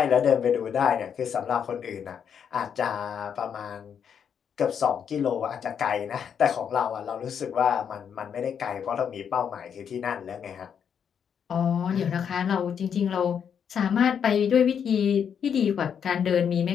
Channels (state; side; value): quieter; right; 7.7 dB